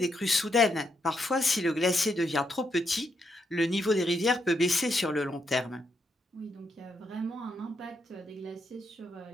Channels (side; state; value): both; normal; correlation 0.79